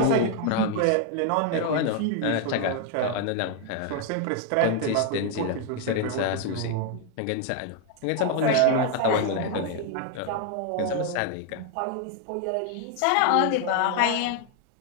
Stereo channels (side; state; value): both; different; correlation 0.00